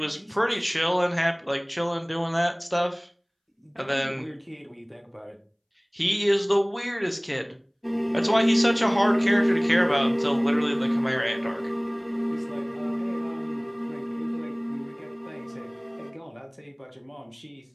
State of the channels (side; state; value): both; identical; correlation 1.00